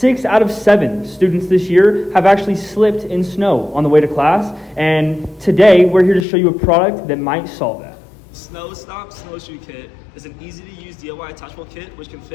out of 7 students this year have actually slipped in snow on the way to class. And today, we're here to show you a product that might solve that. SnowStomp SnowShoe Kit is an easy-to-use DIY attachable kit which can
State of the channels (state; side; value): drops out; right; at 6.2 s